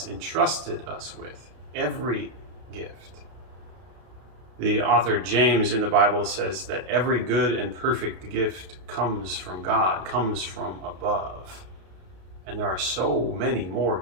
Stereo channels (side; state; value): left; late; 32 ms